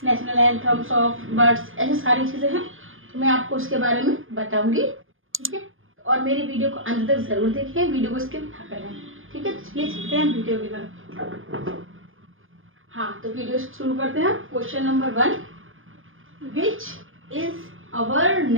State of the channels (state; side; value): late; left; 0.59 ms